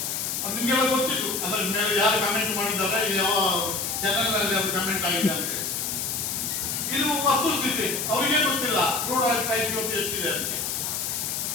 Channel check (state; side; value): noise; left; hiss, 2 dB below the sound